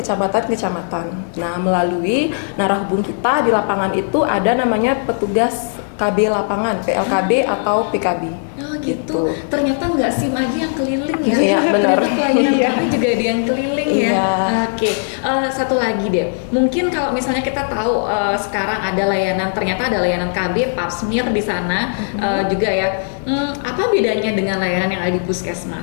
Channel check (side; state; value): right; silent; digital silence